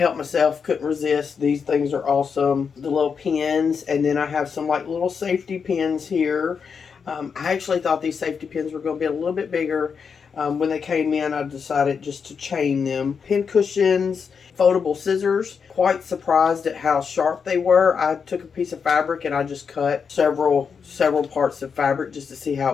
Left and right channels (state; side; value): quieter; right; 6.1 dB